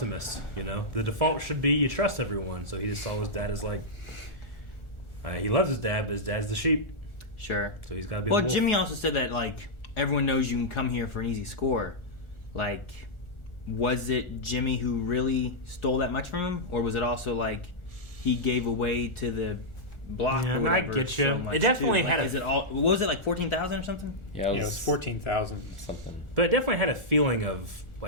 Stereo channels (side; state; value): right; late; 1.4 ms